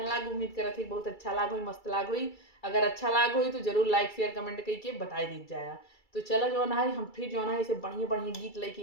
लाग, उम्मीद करत थी बहुत अच्छा लाग हुई, मस्त लाग हुई। अगर अच्छा लाग हुई तो जरूर लाइक शेयर कमेंट करके बताई दी जाए। तो चलो जो है हम फिर जो है इसे बढ़िया बढ़िया गीत लेके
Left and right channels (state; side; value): late; right; 2.3 ms